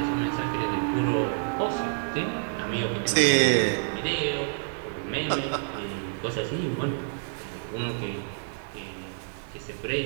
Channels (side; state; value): left; silent; digital silence